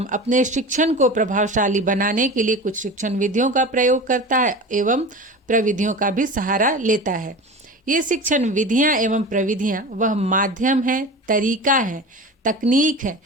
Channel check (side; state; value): both; normal; correlation 0.32